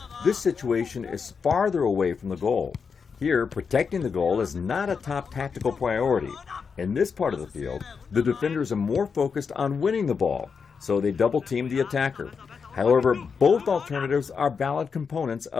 this situation is farther away from the goal. Here, protecting the goal is not a top tactical priority. In this part of the field, the defenders are more focused on winning the ball, so they double team the attacker. However, both alternatives are valid components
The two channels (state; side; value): quieter; right; 5.8 dB